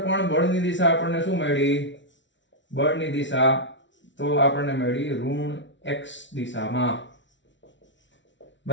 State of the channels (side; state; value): right; late; 0.54 ms